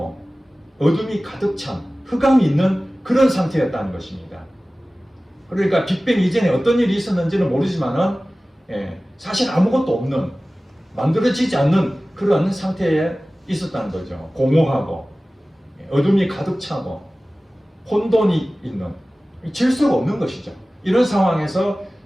어둠이 가득 찬 흑암이 있는 그런 상태였다는 것입니다. 그러니까 빅뱅 이전에 어떤 일이 있었는지는 모르지만은 사실 아무것도 없는, 만들어지지 않는 그런 상태에 있었다는 거죠. 공허하고 어둠이 가득 차고 혼돈이 있는, 질서가 없는 것이죠. 이런 상황에서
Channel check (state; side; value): normal; both; correlation 0.97